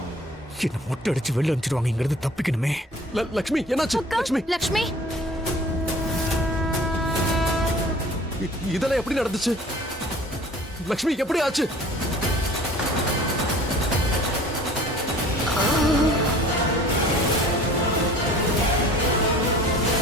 என்ன மொட்டை அடிச்சு வெளில அனுப்பிச்சிருவாங்க. இங்க இருந்து தப்பிக்கணுமே. லக்ஷ்மி என்னாச்சு லக்ஷ்மி லக்ஷ்மி இதெல்லாம் எப்படி நடந்துச்சு லக்ஷ்மி எப்படி ஆச்சு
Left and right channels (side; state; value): both; normal; correlation 0.47